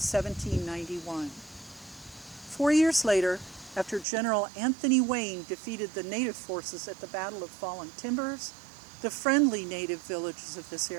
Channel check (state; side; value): drops out; left; at 4.0 s